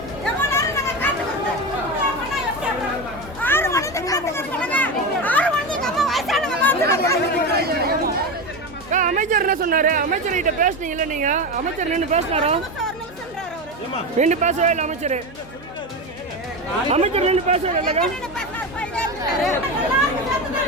அமைச்சர் என்ன சொன்னாரு? அமைச்சர் கிட்ட பேசுனீங்கல்ல நீங்க? அமைச்சர் நின்று பேசினாரோ? நின்று பேசவே இல்லை அமைச்சர். அமைச்சர் நின்று பேசவே இல்லைங்க.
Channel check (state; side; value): normal; both; correlation 0.19